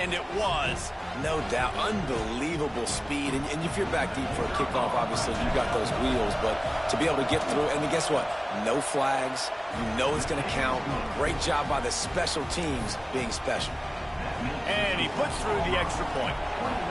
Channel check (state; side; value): identical; both; correlation 1.00